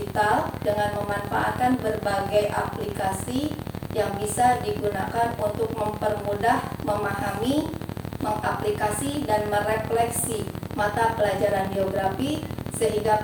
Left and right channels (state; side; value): identical; both; correlation 1.00